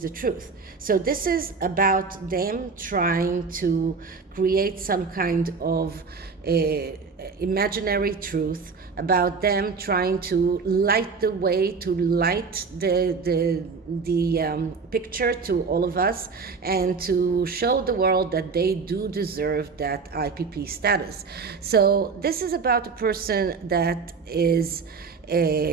the truth. So this is about them trying to create some kind of imaginary truth, about them trying to light the way, to light the picture to all of us, and to show the world that they do deserve that IPP status. So this is about a person that is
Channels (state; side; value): quieter; left; 4.9 dB